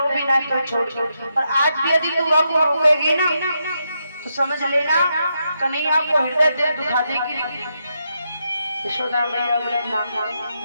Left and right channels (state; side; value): inverted; both; correlation -0.82